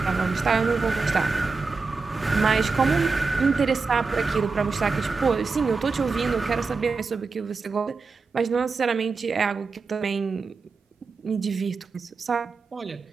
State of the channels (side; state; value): left; quieter; 4.4 dB